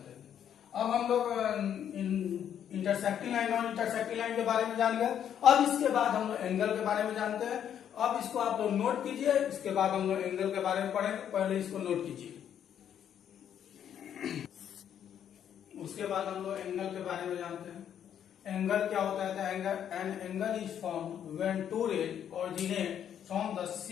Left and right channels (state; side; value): quieter; right; 9.4 dB